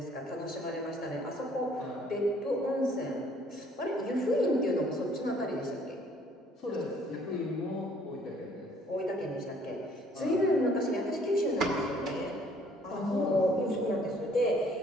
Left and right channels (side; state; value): both; normal; correlation 0.60